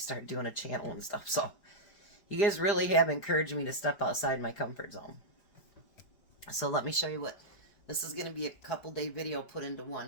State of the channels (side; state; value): right; late; 4.9 ms